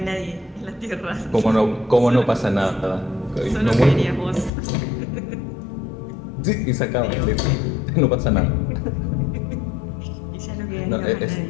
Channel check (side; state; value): right; drops out; at 4.5 s